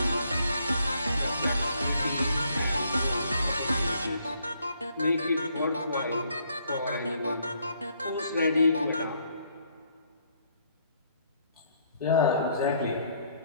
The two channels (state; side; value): inverted; both; correlation -0.68